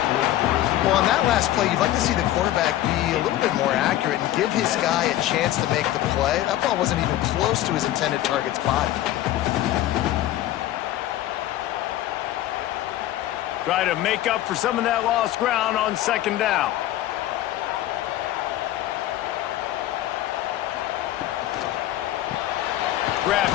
Well, on that last play, you'd like to see the quarterback be a little bit more accurate and give his guy a chance to make the play. That ball wasn't even close to his intended target's body. Try to make up for some of that lost ground on 2nd down. Grabbed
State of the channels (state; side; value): quieter; right; 14.0 dB